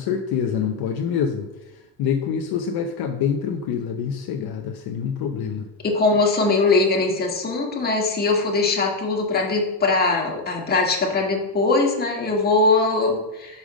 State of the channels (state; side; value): quieter; right; 3.6 dB